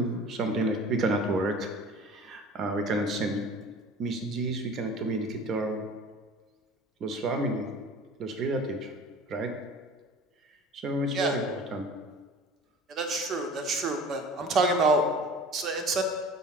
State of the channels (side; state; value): both; normal; correlation 0.42